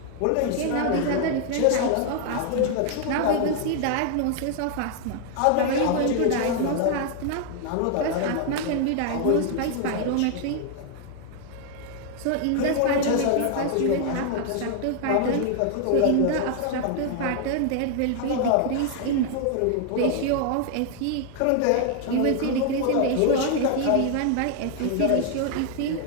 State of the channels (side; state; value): both; different; correlation 0.00